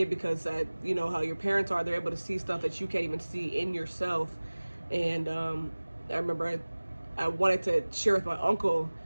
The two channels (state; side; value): inverted; both; correlation -1.00